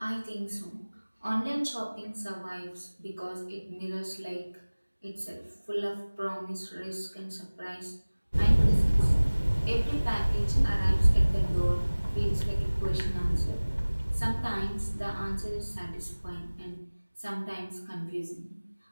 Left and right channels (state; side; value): inverted; both; correlation -1.00